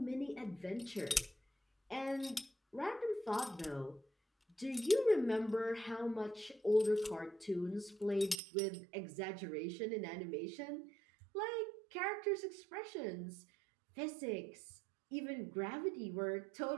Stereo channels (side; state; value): left; drops out; at 8.4 s